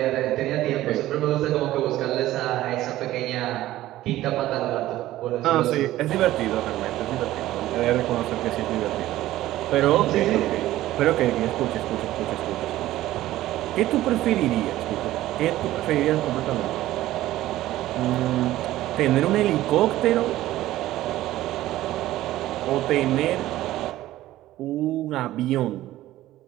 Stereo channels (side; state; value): left; quieter; 15.1 dB